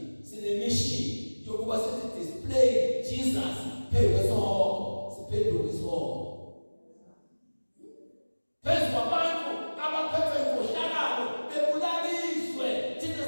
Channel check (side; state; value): both; inverted; correlation -1.00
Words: sinemission yokuba sithi display Jesus phezu kwesihoko, siphendule isihoko. Phezu kwabantu abaphethe inkohlakalo bebulaliswe, thina